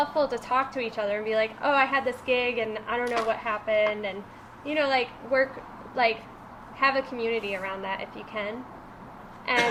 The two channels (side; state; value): both; identical; correlation 1.00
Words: to talk to each other and be like, oh, I had this gig and I don't know what happened, and like work, like have a community around that if you can.